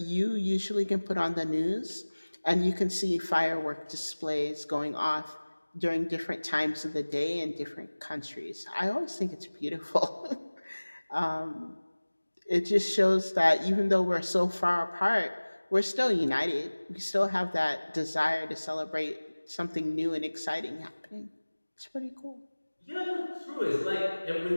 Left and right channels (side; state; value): both; inverted; correlation -1.00